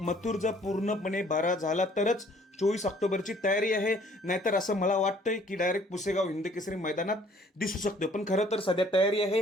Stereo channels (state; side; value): normal; both; correlation 0.58